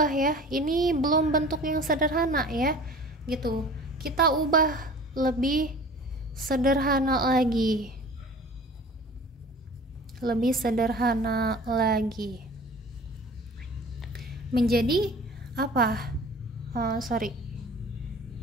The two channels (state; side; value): normal; both; correlation 0.43